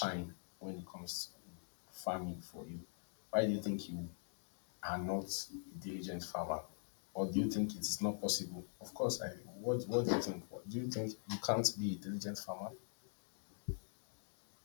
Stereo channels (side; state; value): right; silent; digital silence